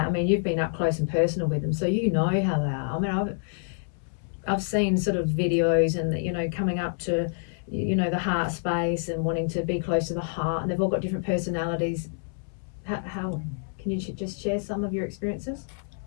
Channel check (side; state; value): right; silent; 60 dB below the other